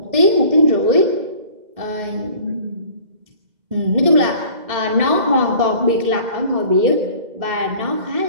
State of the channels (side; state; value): left; late; 2.1 ms